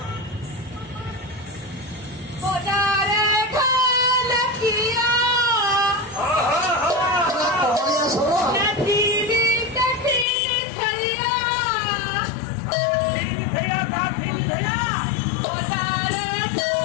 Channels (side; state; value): right; drops out; at 10.2 s